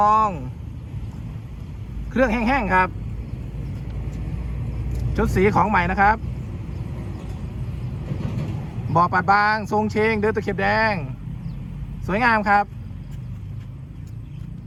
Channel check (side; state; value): both; identical; correlation 1.00